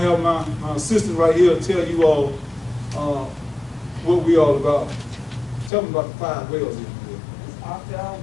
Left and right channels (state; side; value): drops out; right; at 5.7 s